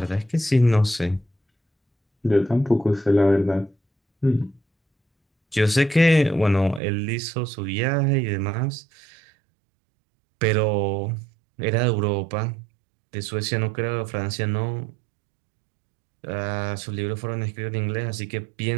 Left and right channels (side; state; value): left; drops out; at 6.8 s